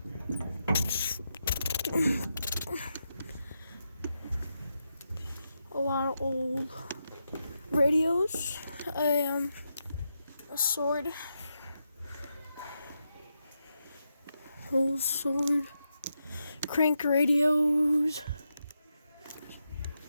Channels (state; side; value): inverted; both; correlation -0.85